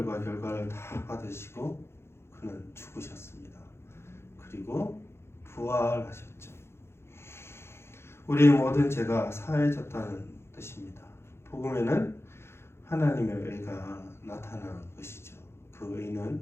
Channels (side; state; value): right; late; 0.12 ms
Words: 결과를 다 받으시고 그는 죽으셨습니다. 그리고 부활하셨죠. 우리의 모든 죄가 사해졌다는 뜻입니다. 복음에는 하나님의 의가 나타난 것이죠. 그 의는